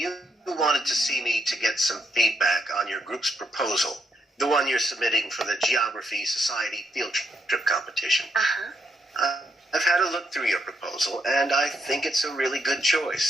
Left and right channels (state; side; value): normal; both; correlation 0.78